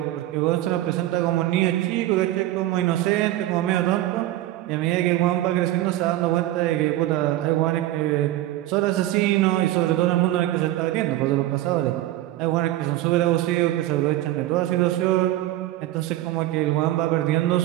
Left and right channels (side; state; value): left; quieter; 15.1 dB